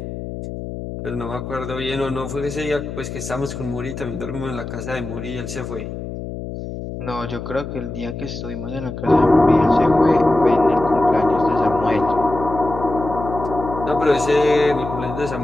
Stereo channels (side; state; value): left; noise; hum, 8 dB below the sound